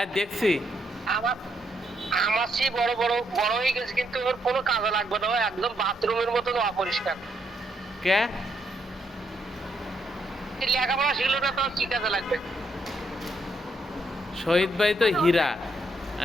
দেখছি। আমার আমার সেই বড় বড় বড় হয়ে গেছে, কিন্তু ওর কোনো কাজে লাগবে না, ও একদম বাথরুমের মতন অপরিষ্কার। কে? এই লেখাপড়া শিখলো না তো কি কাজে লাগবে? শহীদ ভাই তো হীরা,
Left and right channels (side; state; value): both; normal; correlation 0.75